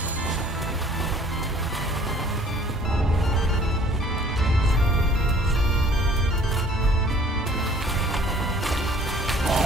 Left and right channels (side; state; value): both; normal; correlation 0.54